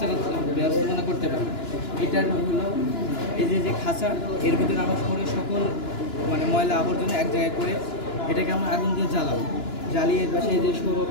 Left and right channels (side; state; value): right; late; 2.9 ms